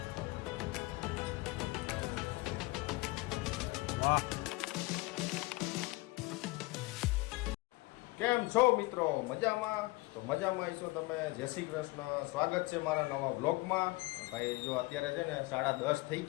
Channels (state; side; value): quieter; right; 22.1 dB